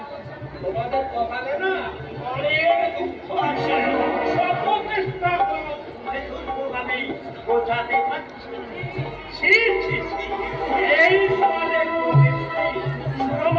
তোমাদের কপালে না অনেক দুঃখ আছে। সব চেষ্টা করো দুর্গভাবে বোঝাতে পারছি। ছি ছি ছি, এই সমাজের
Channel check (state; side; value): identical; both; correlation 1.00